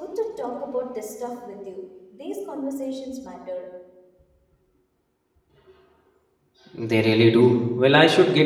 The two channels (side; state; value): both; identical; correlation 1.00